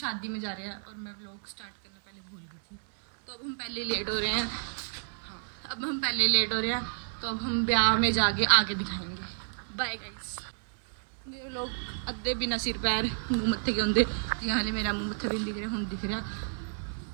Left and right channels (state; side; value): silent; left; digital silence